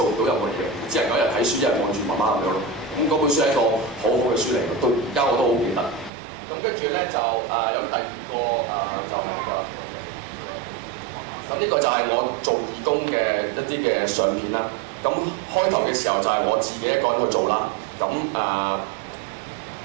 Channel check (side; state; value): left; drops out; at 6.1 s